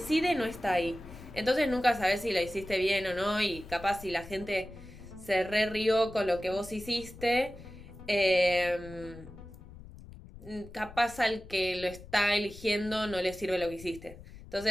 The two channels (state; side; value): noise; left; rumble, 17 dB below the sound